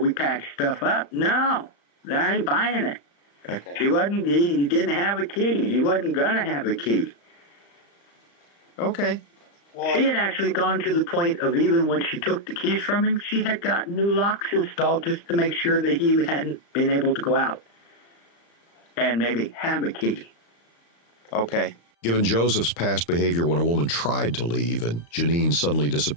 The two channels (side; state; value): right; late; 35 ms